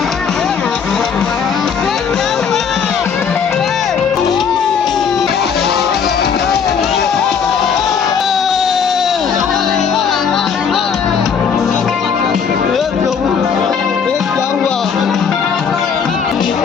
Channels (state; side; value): quieter; right; 6.7 dB